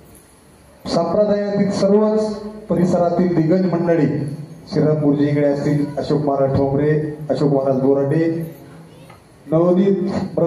संप्रदायातील सर्वच परिसरातील दिग्गज मंडळी श्रीराम गुरुजी इकडे असतील, अशोक महाराज ठोंबरे, अशोक महाराज बोराडे, नवोदित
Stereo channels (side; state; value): both; identical; correlation 1.00